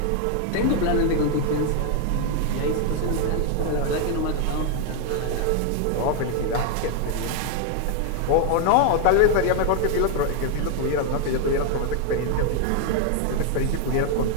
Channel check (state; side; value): different; both; correlation 0.00